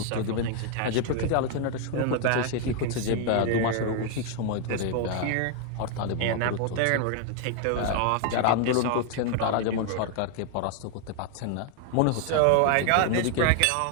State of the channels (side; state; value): both; different; correlation 0.00